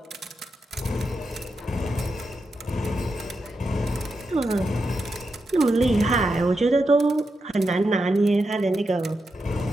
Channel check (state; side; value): normal; both; correlation 0.86